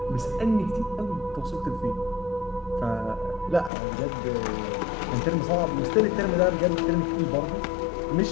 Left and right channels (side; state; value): right; drops out; at 3.7 s